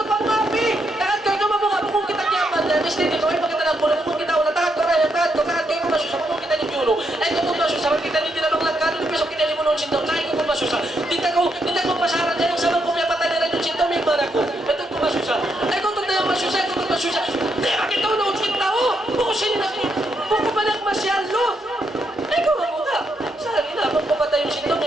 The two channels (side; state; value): both; normal; correlation 0.79